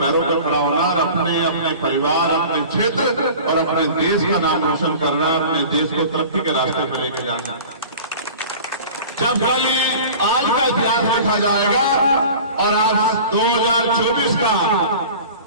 पैरों पर खड़ा होना और अपने परिवार, अपने क्षेत्र और अपने देश का नाम रोशन करना, अपने देश को तरक्की के रास्ते पर लेके जाना। जब खाली आज का इतिहास लिखा जाएगा और आप 2024 का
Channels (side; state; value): both; inverted; correlation -0.40